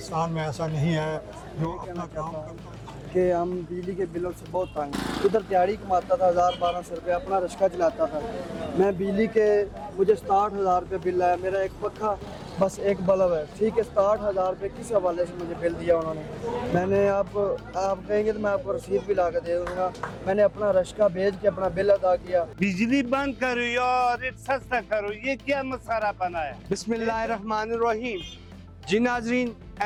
में ऐसा नहीं है जो अपना काम करता है कि हम बिजली के बिलों से बहुत तंग हैं। उधर दिहाड़ी कमाता था 1000-1200 रुपये, अपना रिक्शा चलाता था। मैं बिजली के मुझे 67,000 रुपये बिल आया। मेरा एक पक्का बस एक बल्ब है, ठीक है। 67,000 रुपये किस हवाले से मुझे बिल दिया उन्होंने। मैंने आप कहेंगे तो मैं आपको रसीद भी ला कर दे दूँगा। मैंने अपना रिक्शा भेज के अपना बिल अदा किया। बिजली बंद करो या रेट सस्ता करो, ये क्या मसाला बना है। बिस्मिल्लाहिर्रहमानिर्रहीम। जी नाज़रीन,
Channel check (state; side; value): identical; both; correlation 1.00